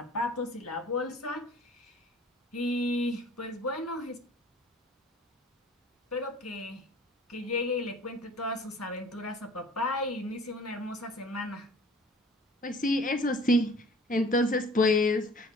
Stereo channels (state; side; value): normal; both; correlation 0.49